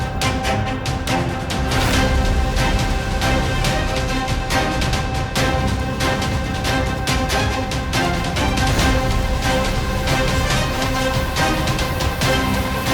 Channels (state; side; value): identical; both; correlation 1.00